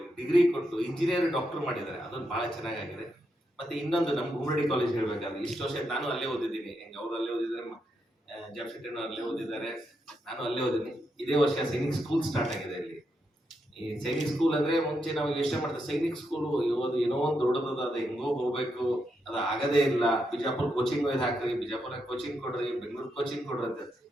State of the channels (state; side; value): normal; both; correlation 0.82